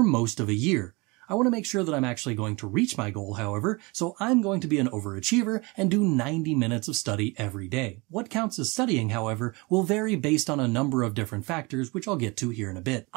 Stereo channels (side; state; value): left; quieter; 26.4 dB